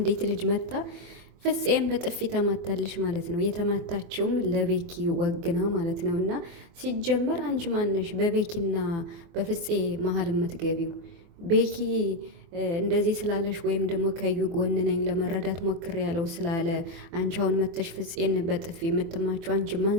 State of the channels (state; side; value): late; left; 24 ms